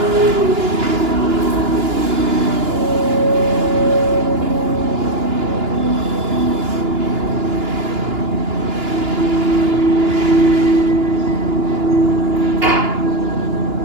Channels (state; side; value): late; left; 2.9 ms